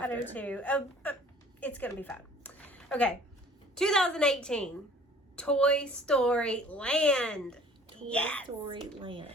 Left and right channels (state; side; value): normal; both; correlation 0.51